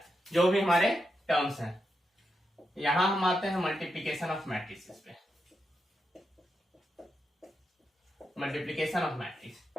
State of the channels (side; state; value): both; normal; correlation 0.86